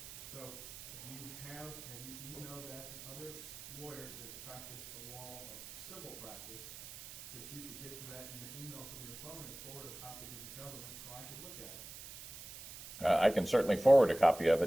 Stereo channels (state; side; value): noise; right; hiss, 13 dB below the sound